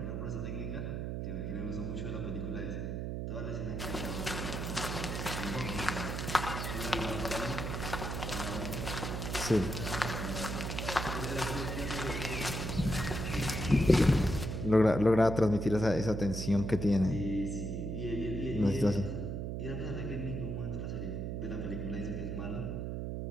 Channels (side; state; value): right; noise; hum, 3 dB below the sound